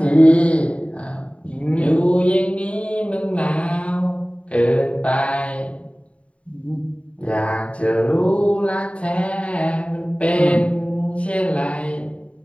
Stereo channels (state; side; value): late; right; 0.063 ms